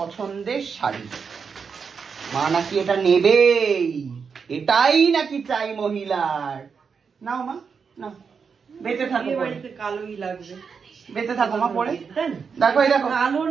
শাড়ি, মা নাকি এটা নেবেই, এটাই নাকি চাই মহিলার। নাও মা নাও, বেঁচে থাকো, কালোই লাগবে, বেঁচে থাকো মা পরে। দেখো এই দেখো কালো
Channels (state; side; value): quieter; left; 5.9 dB